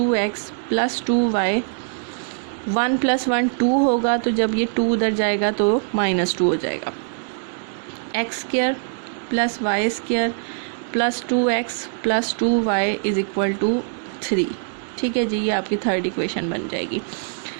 plus 2y। 1 plus 1 2 होगा, तो जब ये 2 उधर जाएगा तो -2 हो जाएगा। X square plus Y square plus 2x plus 2y is equal to 3, ठीक है जी। ये आपकी थर्ड इक्वेशन बन जाएगी।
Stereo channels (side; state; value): left; silent; digital silence